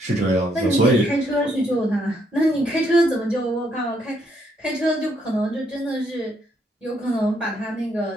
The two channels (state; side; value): normal; both; correlation 0.73